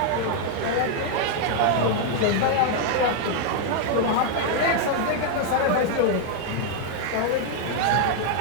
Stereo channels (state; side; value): different; both; correlation 0.00